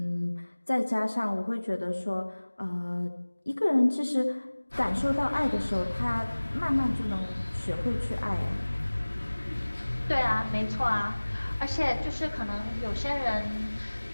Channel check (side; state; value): both; inverted; correlation -1.00